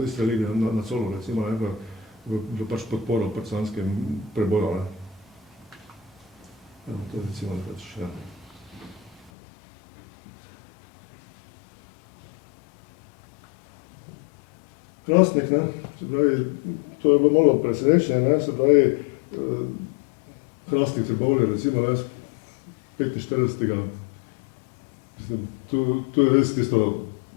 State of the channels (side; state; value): right; drops out; at 9.3 s